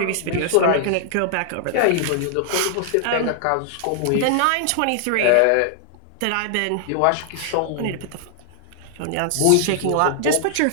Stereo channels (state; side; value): different; both; correlation -0.01